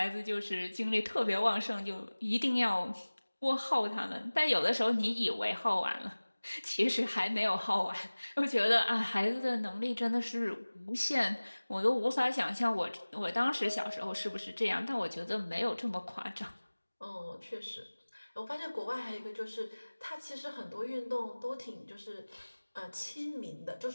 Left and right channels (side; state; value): both; inverted; correlation -1.00